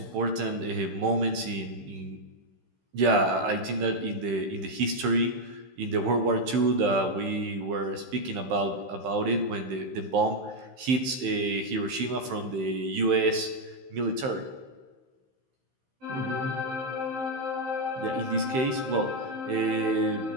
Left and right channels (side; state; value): left; late; 15 ms